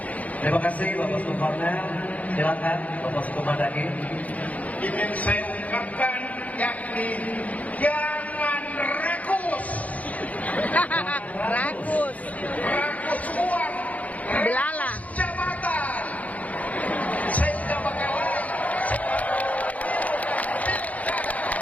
Terima kasih Bapak Uskup Cornel. Silakan Bapak Uskup Madani. Ini yang saya ungkapkan yakni jangan rakus Rakus. uang, Belala. jabatan, sehingga bakalan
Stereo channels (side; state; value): right; late; 0.071 ms